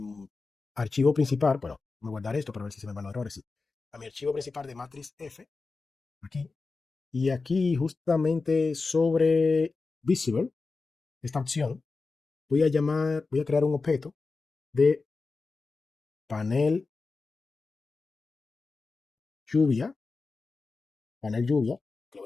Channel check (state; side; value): quieter; right; 4.1 dB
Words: archivo principal. Bueno, me guardar esto para ver si se me van los errores. Sí. A mi archivo principal de matriz F, aquí. Y aquí, justamente sobre Visible, esta opción, voy a crear un objeto de panel lluvia, que lo